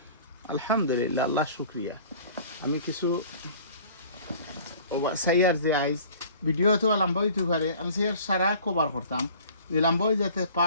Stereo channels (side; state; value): both; inverted; correlation -0.48